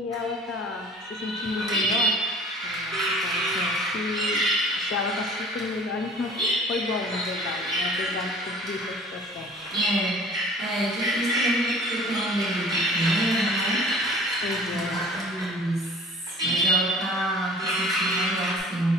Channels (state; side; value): normal; both; correlation 0.47